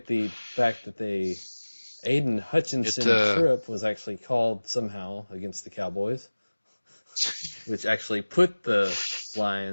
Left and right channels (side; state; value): both; inverted; correlation -1.00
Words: the fact that Aiden Hutchinson trip was actually called somehow against the Cowboys, which actually put the